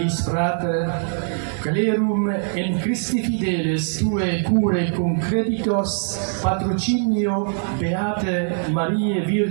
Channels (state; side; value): silent; left; digital silence